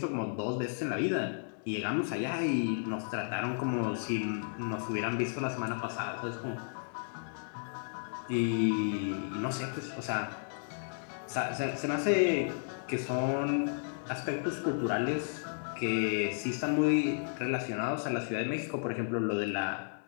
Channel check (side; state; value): right; silent; digital silence